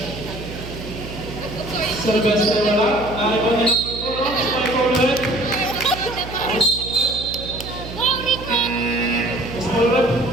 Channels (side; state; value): right; noise; hum, 11 dB below the sound